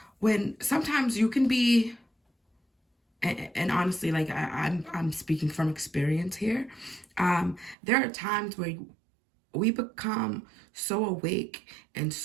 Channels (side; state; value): left; drops out; at 7.8 s